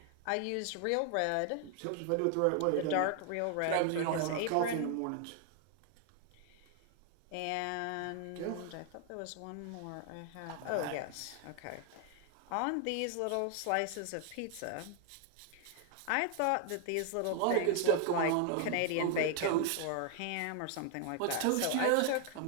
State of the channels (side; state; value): both; different; correlation 0.00